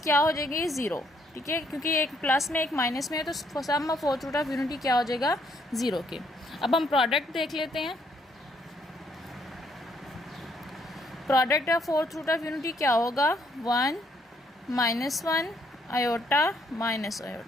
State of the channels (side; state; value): both; normal; correlation 0.70